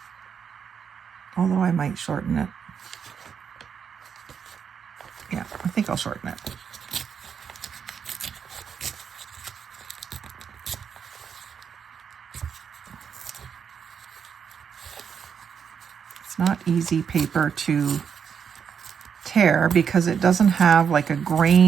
although I might shorten it. Yeah, I think I'll shorten it. It's not easy paper to tear because it doesn't have like a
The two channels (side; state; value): left; quieter; 7.1 dB